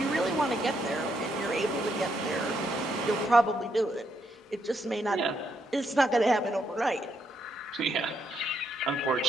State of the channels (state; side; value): normal; both; correlation 0.77